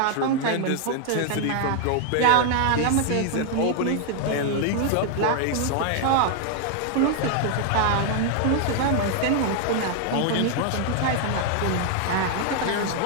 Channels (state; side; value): different; both; correlation 0.00